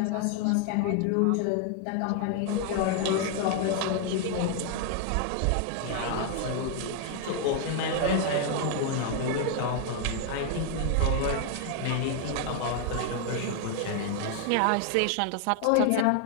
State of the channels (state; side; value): different; both; correlation 0.00